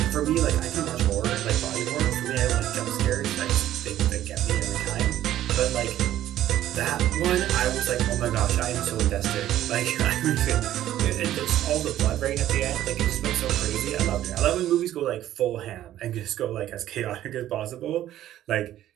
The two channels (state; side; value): quieter; left; 12.8 dB